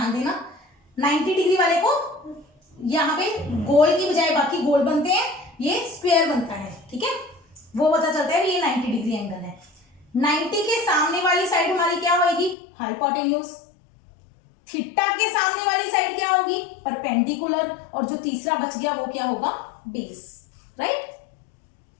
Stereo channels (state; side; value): drops out; right; at 12.6 s